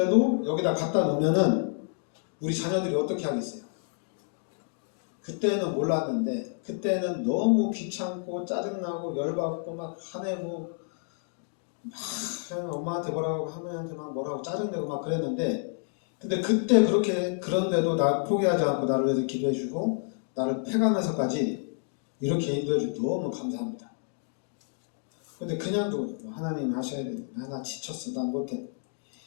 여기다 갖다 놓으면은 우리 자녀들이 어떻게 하겠어요? 그때는 몰랐는데 그때는 너무 귀찮고 짜증나고 열받고 막 화내고 막 엄마한테 뭐라고 할머니한테 막 뭐라고 짜증내고 막 그랬는데, 근데 그때 그런데도 날 포기하지 않고 나를 위해서 기도해주고 나를 패가면서까지 이렇게 인도해주고 너무 감사합니다. 근데 그냥 하나님 하셔야 돼. 나 지쳤어. 난 못해.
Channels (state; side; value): silent; right; 58 dB below the other